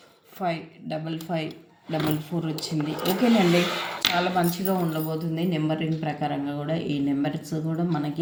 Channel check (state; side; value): identical; both; correlation 1.00